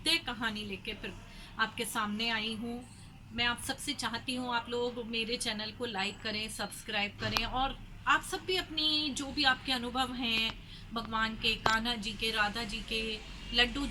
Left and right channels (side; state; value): both; identical; correlation 1.00